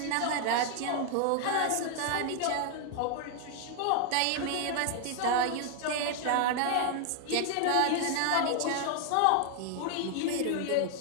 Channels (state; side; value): different; both; correlation 0.00